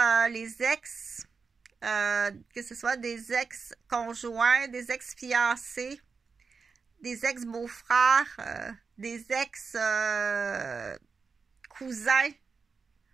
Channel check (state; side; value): quieter; left; 5.1 dB